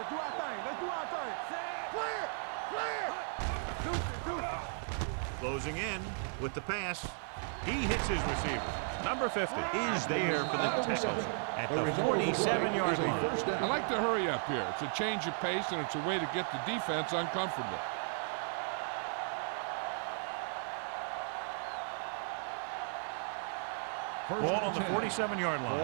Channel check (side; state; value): left; silent; 54 dB below the other